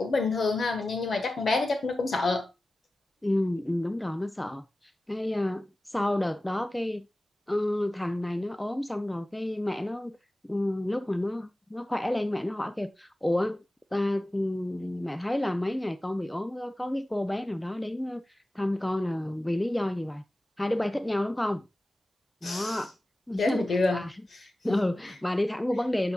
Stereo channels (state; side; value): normal; both; correlation 0.95